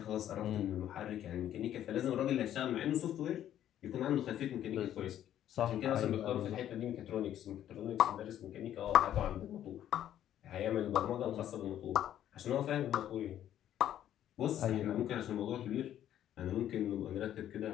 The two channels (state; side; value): quieter; right; 11.3 dB